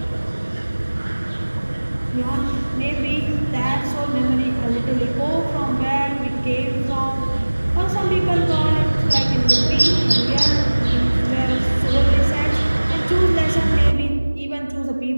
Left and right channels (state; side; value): inverted; both; correlation -1.00